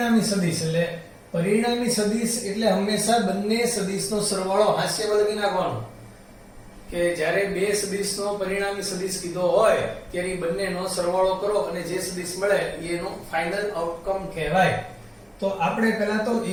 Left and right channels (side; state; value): both; identical; correlation 1.00